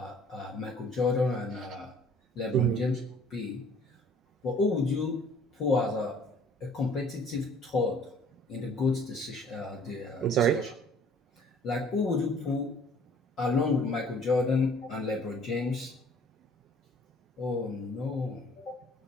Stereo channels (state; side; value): normal; both; correlation 0.54